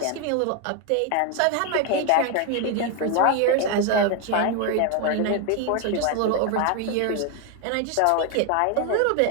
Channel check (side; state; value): both; different; correlation 0.01